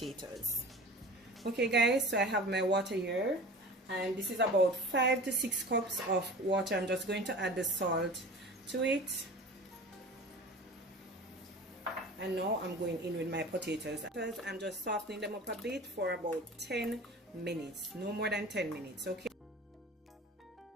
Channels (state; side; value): normal; both; correlation 0.38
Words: Okay guys, so I have my water here, and this is about 5 to 6 cups of water. I'm just going to add the salt to it, and now I'm going in with my potatoes. I'm just softening them up a bit for about 10 minutes, no more than 10 minutes. Okay,